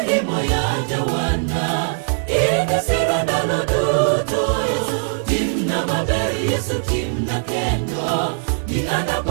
imo ya jawana ina sirandalo duto Yesu timna maberi Yesu timna kendo ni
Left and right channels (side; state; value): left; silent; 57 dB below the other